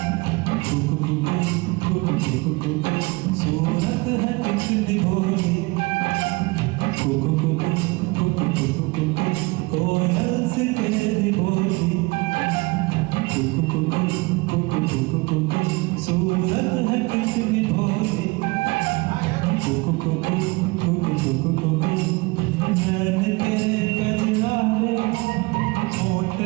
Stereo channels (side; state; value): left; quieter; 24.9 dB